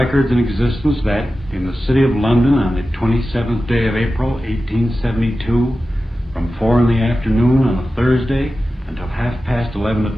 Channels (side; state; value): both; normal; correlation 0.94